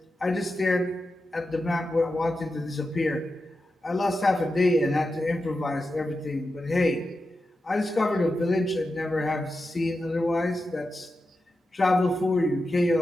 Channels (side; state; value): both; normal; correlation 0.90